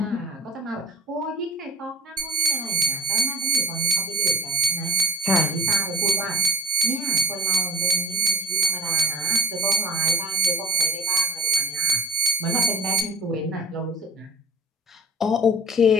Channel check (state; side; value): normal; both; correlation 0.39